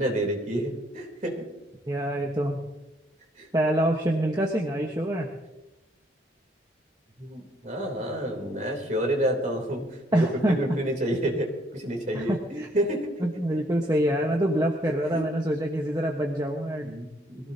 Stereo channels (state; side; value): normal; both; correlation 0.66